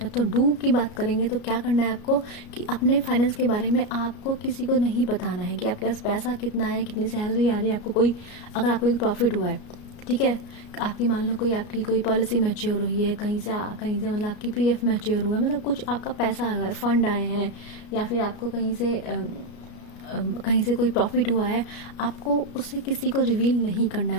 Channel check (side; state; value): right; late; 33 ms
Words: तो डू की बात करेंगे तो क्या करना है आपको कि अपने फाइनेंस के बारे में आपको किसी को नहीं बताना है कि आपके पास पैसा कितना है, कितनी सैलरी आ रही है आपको। अगर आपको कोई प्रॉफिट हुआ है, ठीक है, आपकी मान लो आपकी कोई पॉलिसी मैच्योर हुई है कहीं से मतलब आपकी पीएफ मैच्योर हुआ है, मतलब कुछ आपका पैसा आया है, फंड आए हैं, या फिर आपको कहीं से कोई प्रॉफिट हुआ है, आपको उसे किसी को रिवील नहीं करना है।